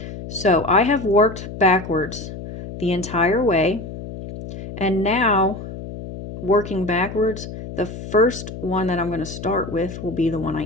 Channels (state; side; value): noise; left; hum, 10 dB below the sound